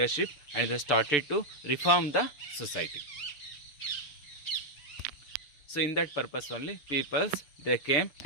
and they started to reform the society. So in that purpose only peoples they came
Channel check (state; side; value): late; right; 6.8 ms